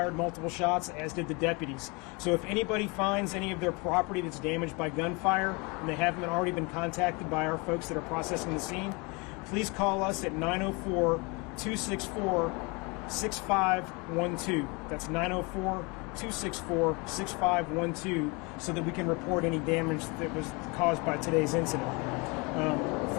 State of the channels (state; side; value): quieter; right; 28.8 dB